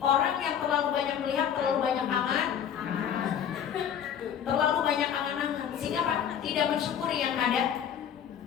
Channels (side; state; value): right; quieter; 8.9 dB